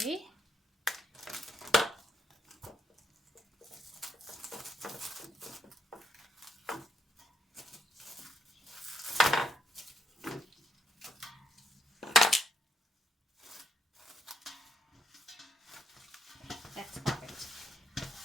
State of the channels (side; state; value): both; normal; correlation 0.75